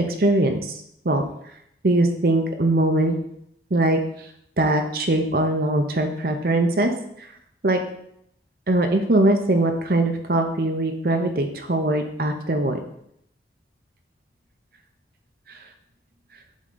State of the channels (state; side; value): normal; both; correlation 0.49